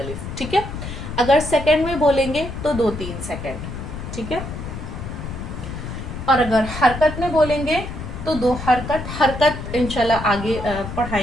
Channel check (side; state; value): left; noise; rumble, 8 dB below the sound